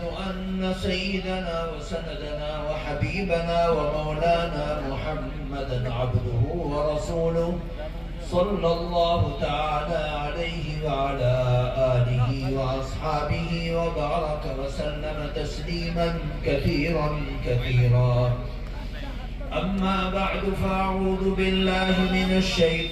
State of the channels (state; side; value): identical; both; correlation 1.00